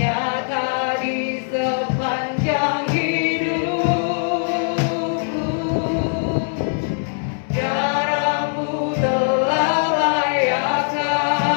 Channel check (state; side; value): silent; right; digital silence